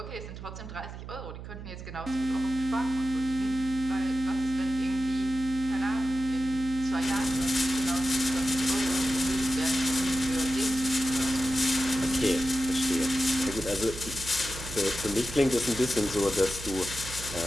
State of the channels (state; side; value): noise; right; hum, 11 dB below the sound